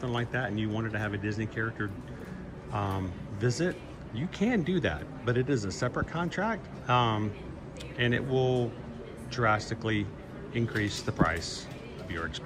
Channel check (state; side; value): identical; both; correlation 1.00